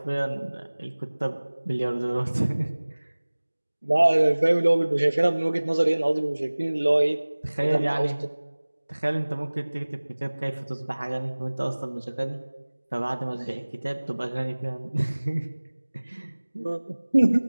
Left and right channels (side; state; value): both; inverted; correlation -1.00